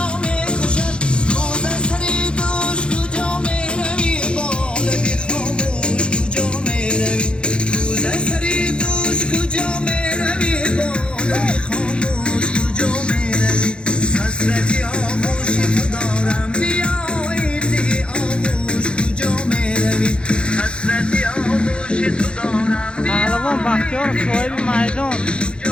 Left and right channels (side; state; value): right; late; 0.055 ms